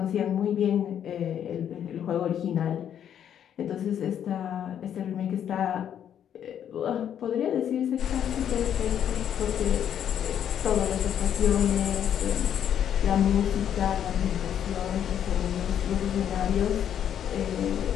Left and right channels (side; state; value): right; quieter; 9.5 dB